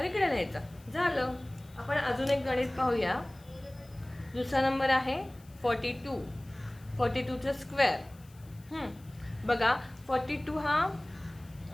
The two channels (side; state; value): left; noise; hiss, 27 dB below the sound